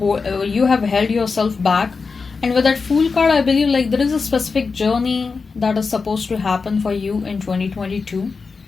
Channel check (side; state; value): right; quieter; 4.7 dB